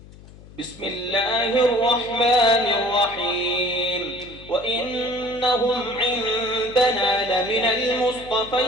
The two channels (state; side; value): noise; left; hum, 20 dB below the sound